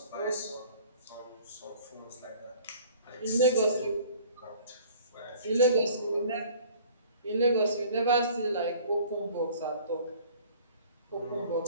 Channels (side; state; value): both; inverted; correlation -0.50